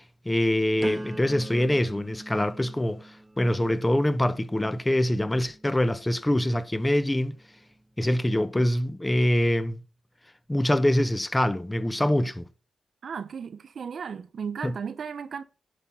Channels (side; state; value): both; normal; correlation 0.98